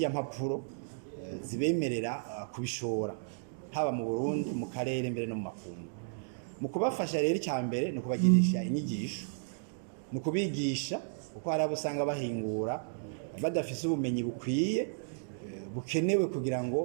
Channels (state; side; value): silent; left; digital silence